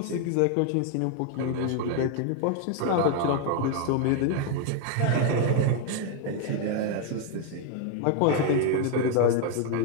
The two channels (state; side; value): different; both; correlation 0.01